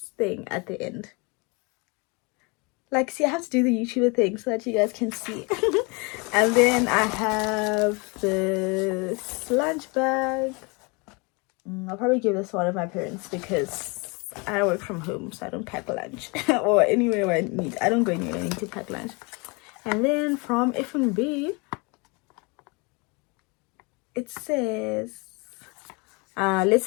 thing at the end. Like, see, I have to do the YouTuber thing so that you guys can see. And then I have this lunch bag. I'll probably give this to one of my parents because I work from home, so I don't pack lunch. Or anywhere I need. I don't go anywhere I need to pack lunch. And then from F&B, it says, let's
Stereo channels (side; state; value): right; quieter; 29.2 dB